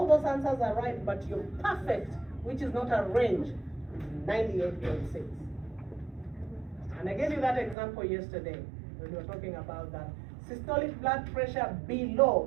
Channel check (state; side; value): drops out; left; at 7.8 s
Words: those answers are right, but your perfect, which is not a range, 98.6. And I gave you that example yesterday when we were talking about that. Systolic blood pressure